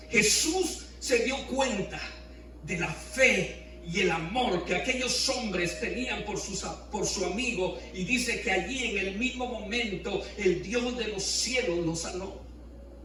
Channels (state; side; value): identical; both; correlation 1.00